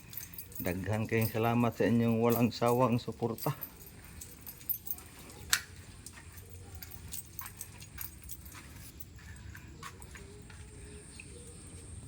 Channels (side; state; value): both; identical; correlation 1.00